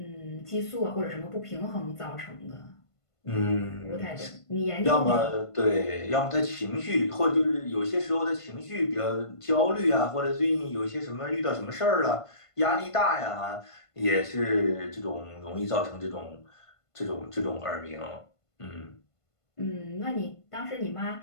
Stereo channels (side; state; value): right; late; 1.5 ms